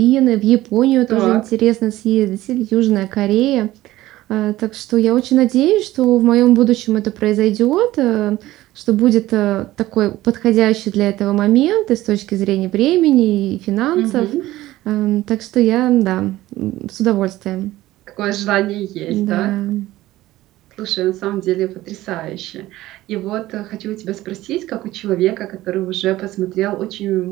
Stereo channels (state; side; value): quieter; left; 16.2 dB